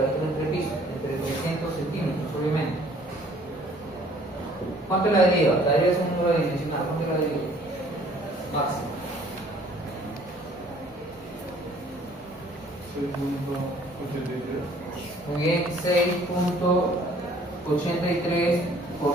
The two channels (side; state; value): both; normal; correlation 0.57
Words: la altura entre pisos, entre 300 centímetros, obviamente. ¿Cuánto es la deriva? La deriva es un número dimensional. ¿Cuánto es la deriva? Máxima. 6.83. Muy bien, 6.83 por